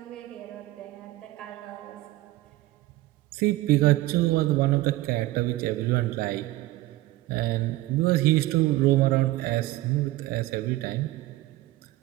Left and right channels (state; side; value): quieter; left; 17.5 dB